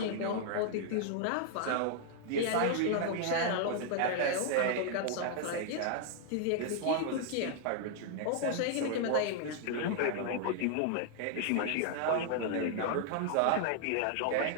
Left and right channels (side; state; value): both; different; correlation 0.00